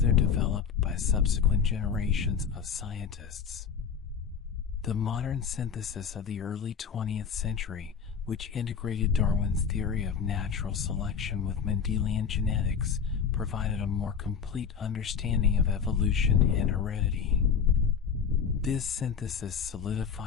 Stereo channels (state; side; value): quieter; right; 6.8 dB